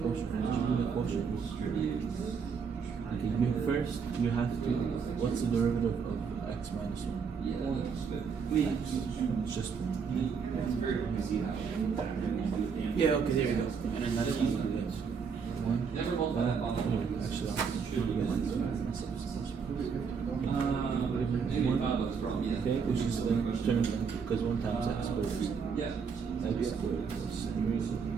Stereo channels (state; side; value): quieter; left; 6.0 dB